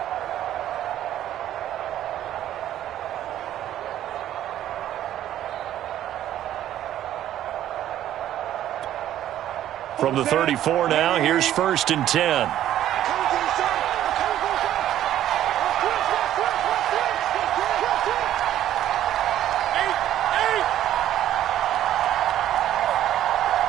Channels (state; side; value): quieter; left; 12.1 dB